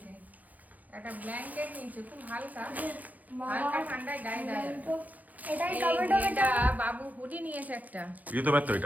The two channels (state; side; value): late; left; 0.079 ms